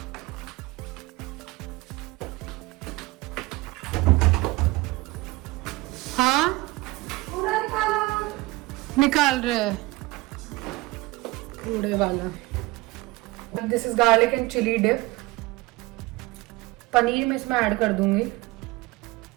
हाँ निकाल रहे हैं कूड़े वाला। This is garlic and chilli dip. Paneer मैं इसमें ऐड कर दूंगी।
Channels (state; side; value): quieter; left; 21.8 dB